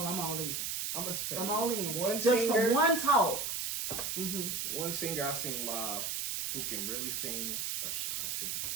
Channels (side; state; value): right; noise; hiss, 2 dB below the sound